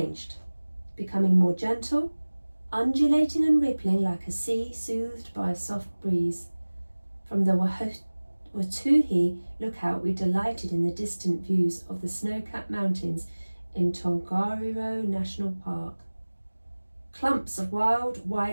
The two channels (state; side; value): inverted; both; correlation -1.00